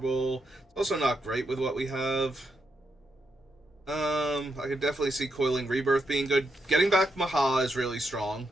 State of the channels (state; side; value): normal; both; correlation 0.82